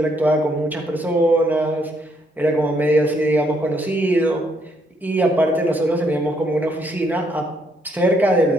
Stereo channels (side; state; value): both; normal; correlation 0.72